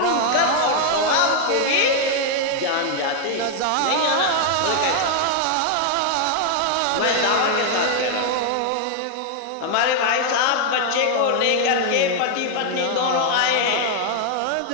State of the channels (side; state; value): both; different; correlation 0.00